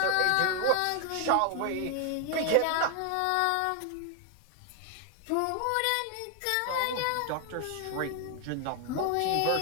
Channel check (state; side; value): different; both; correlation 0.00